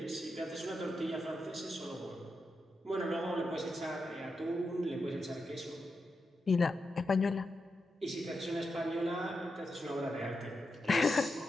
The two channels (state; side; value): normal; both; correlation 0.87